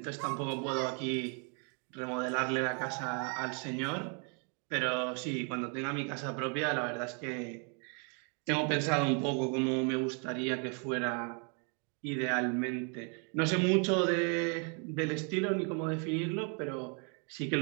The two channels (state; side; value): quieter; left; 38.4 dB